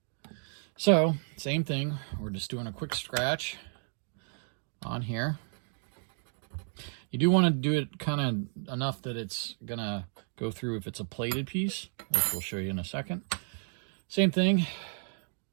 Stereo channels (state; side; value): silent; left; 56 dB below the other